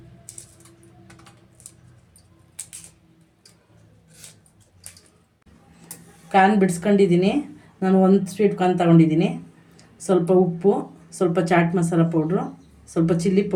ಕಾರ್ನ್ ಬಿಡಿಸ್ಕೊಂಡಿದ್ದೀನಿ. ನಾನು ಒಂದು ಸ್ವೀಟ್ ಕಾರ್ನ್ ತಗೊಂಡಿದ್ದೀನಿ. ಸ್ವಲ್ಪ ಉಪ್ಪು, ಸ್ವಲ್ಪ ಚಾಟ್ ಮಸಾಲ ಪೌಡ್ರು, ಸ್ವಲ್ಪ ಚಿಲ್ಲಿ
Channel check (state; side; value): identical; both; correlation 1.00